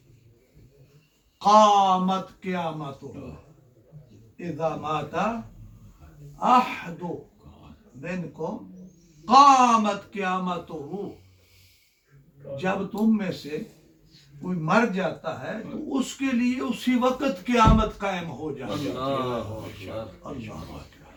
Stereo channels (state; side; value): identical; both; correlation 1.00